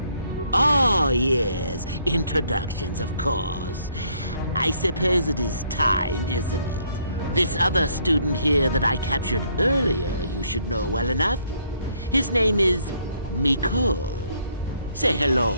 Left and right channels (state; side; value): inverted; both; correlation -0.67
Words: Oh, yes, introductions, of course. I suppose it is time, isn't it? This other student here that I captured earlier you should know well enough. His name is Mekel. Say